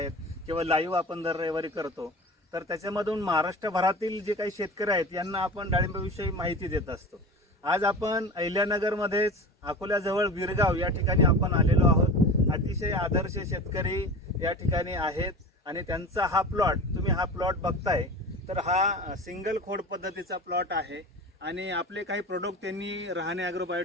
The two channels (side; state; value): both; normal; correlation 0.33